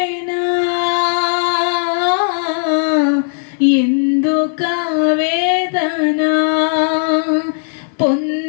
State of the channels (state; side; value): silent; right; 69 dB below the other